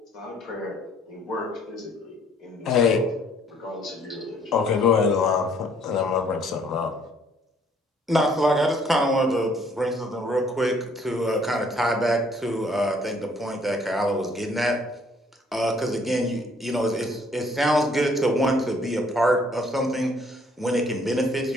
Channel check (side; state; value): both; normal; correlation 0.62